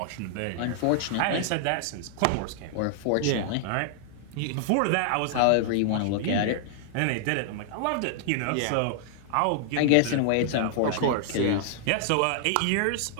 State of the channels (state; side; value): different; both; correlation -0.01